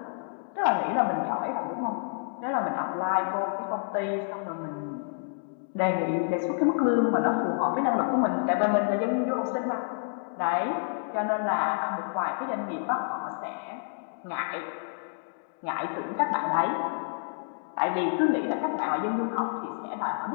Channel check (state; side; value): silent; right; digital silence